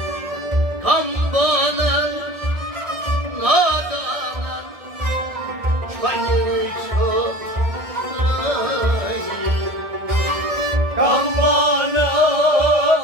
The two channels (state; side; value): late; left; 1.7 ms